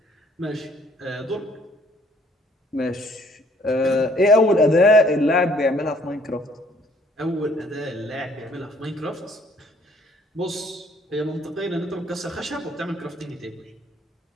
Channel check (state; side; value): normal; both; correlation 0.61